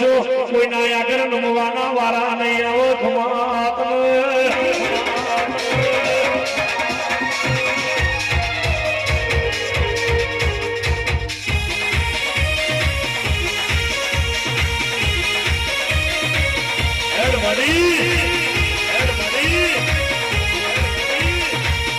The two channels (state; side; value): identical; both; correlation 1.00